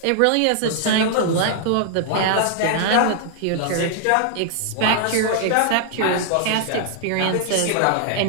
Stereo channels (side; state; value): both; different; correlation 0.00